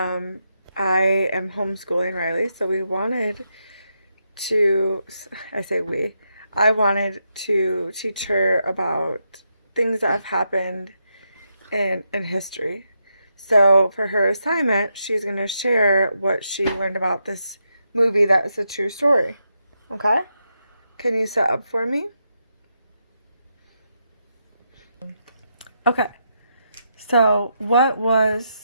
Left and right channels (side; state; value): both; inverted; correlation -0.83